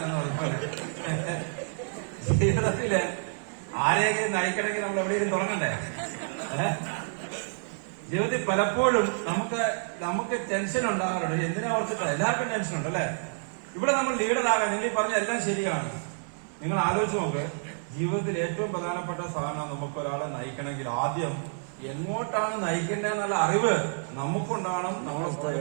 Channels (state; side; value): silent; left; 59 dB below the other